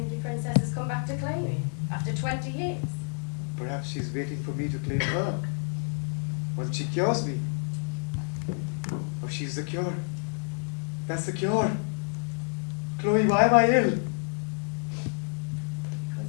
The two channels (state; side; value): silent; right; 59 dB below the other